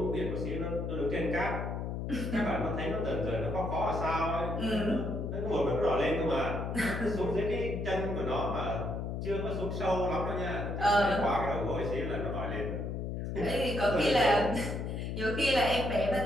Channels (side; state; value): left; noise; hum, 3 dB below the sound